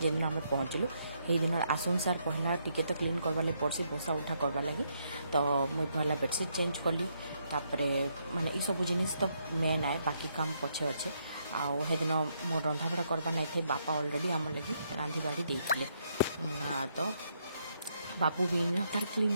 जेन आमे पहुंचलु हेई दिनर आसुन सार पहला टिके तो क्लीन करबा ले पड़सी बोसा उठा करबा लगी तो मुई पहला बेडशीट चेंज कली तापरे माने ई सब जिनिस तो मेन आए बाकी काम पछे अच्छे आउ हेदिन मोर रंधा बड़ा करबा नहीं थे बापा ऑलरेडी आम लगी रांधी बाड़ी देइथिले तो बापू भी तार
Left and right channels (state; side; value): inverted; both; correlation -0.76